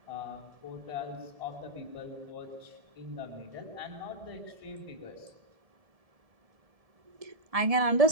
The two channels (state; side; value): late; left; 1.7 ms